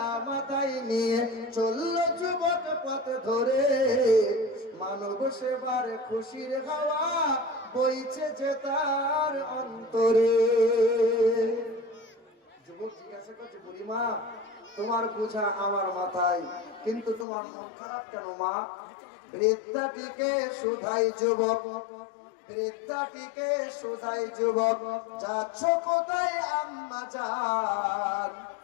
মাথায় নিয়ে চলল যুবক পথ ধরে, মানব সেবার খুশির হাওয়া বইছে যে তার অন্তরে। যুবক জিজ্ঞাসা করছে, বুড়িমা তোমার বোঝা আমার মাথায়, কিন্তু তোমার মন খারাপ কেন মা? বৃদ্ধাটিকে শুধাই যুবক, বৃদ্ধাটিকে শুধাই যুবক, যাচ্ছ কোথায় আম্মা জান?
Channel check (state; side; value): drops out; right; at 17.2 s